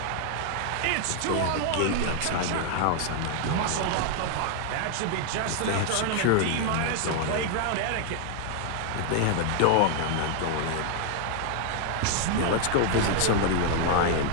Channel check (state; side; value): different; both; correlation 0.00